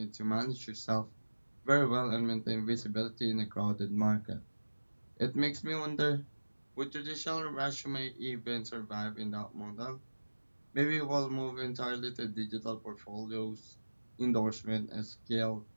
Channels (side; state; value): both; inverted; correlation -1.00